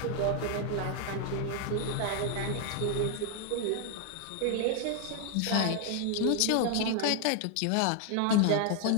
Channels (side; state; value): both; different; correlation 0.00